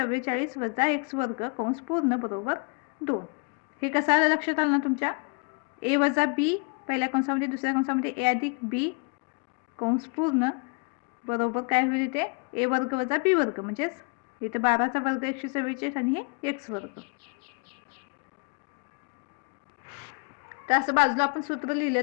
वजा x वर्ग कंस पूर्ण बरोबर 2. हे कसं आलं लक्षात आलं ना तुमच्या a वजा b पहिल्या कंसामध्ये दुसऱ्या कंसामध्ये a अधिक b कंस पूर्ण बरोबर काय होईल इथे a वर्ग वजा b वर्ग म्हणजेच इथे 12चा वर्ग 144 आणि हे x वर्ग. तर असं बाजूला आपण सूत्र लिहिलं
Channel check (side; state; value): right; quieter; 34.4 dB